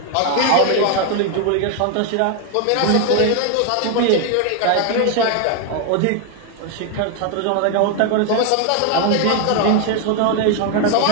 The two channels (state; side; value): different; both; correlation 0.01